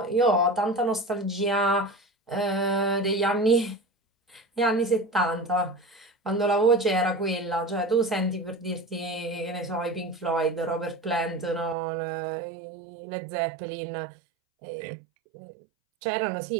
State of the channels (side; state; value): left; drops out; at 11.8 s